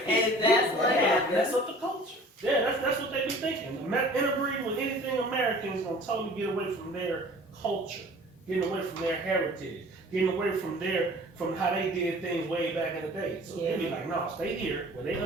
And that's what happened. That's what the culture. Yeah, that's what they be thinking. Interbreeding with anything American is gonna totally get away from their culture, getting away from their heritage, getting away from how they did things way back in the day. So they be like, no, stay here where they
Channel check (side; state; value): both; normal; correlation 0.47